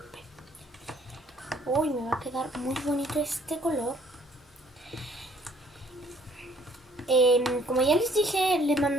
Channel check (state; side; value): normal; both; correlation 0.60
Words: Uy, me va a quedar muy bonito este color. Como ya les dije, les